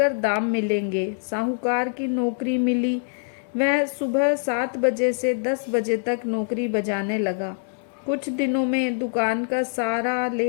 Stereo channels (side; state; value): right; silent; digital silence